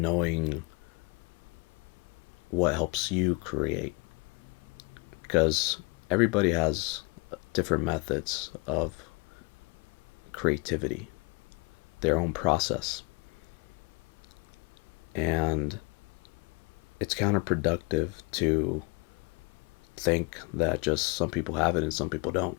knowing what helps you create. Because everybody has different methods of creativity, their own process. And it's counterproductive to think that just some people have it and some people don't.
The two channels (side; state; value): right; quieter; 28.6 dB